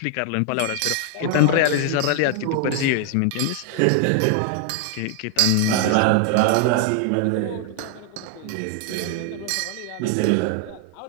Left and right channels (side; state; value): both; different; correlation 0.00